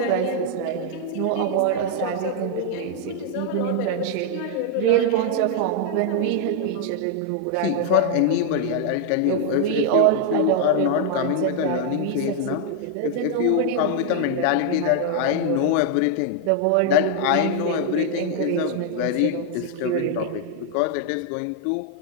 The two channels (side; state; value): both; different; correlation 0.00